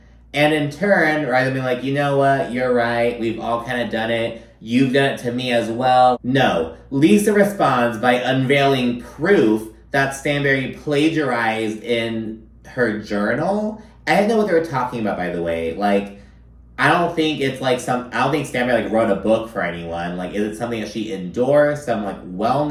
And in turn, rather than being like, you know what, you're right, we've all kind of done it, you've done it to me as well. No, Lisa responds by unveiling proof that Stanberry plagiarized in her journal. I didn't know what they were talking about, by the way. Like, I don't think it's like I don't think Stanberry, like, wrote a book for anyone. Like, is it something that she endorsed? Some, like,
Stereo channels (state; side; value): identical; both; correlation 1.00